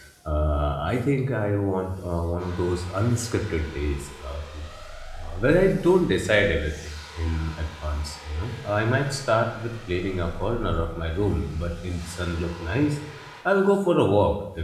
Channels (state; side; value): identical; both; correlation 1.00